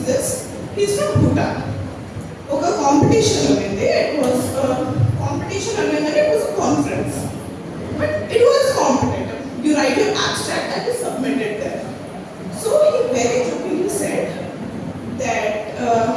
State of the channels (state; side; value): identical; both; correlation 1.00